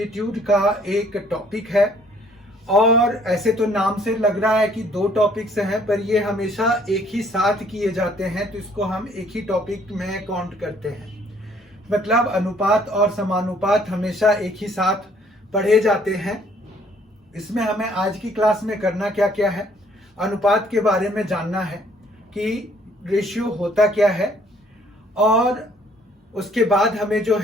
का एक टॉपिक है। और ऐसे तो नाम से लग रहा है कि दो टॉपिक्स हैं, पर ये हमेशा एक ही साथ किए जाते हैं, तो इसको हम एक ही टॉपिक में काउंट करते हैं। मतलब अनुपात और समानुपात हमेशा एक ही साथ पढ़े जाते हैं। इसमें हमें आज की क्लास में करना क्या क्या है, अनुपात के बारे में जानना है कि रेशियो होता क्या है, और उसके बाद हमें जो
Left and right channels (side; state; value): both; normal; correlation 0.62